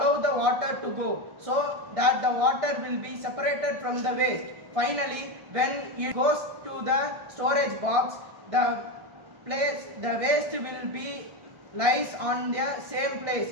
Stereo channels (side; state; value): left; late; 1.6 ms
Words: the water to go so that the water will be separated from the waste. Finally, when it goes to the storage box, the waste will be lies on the same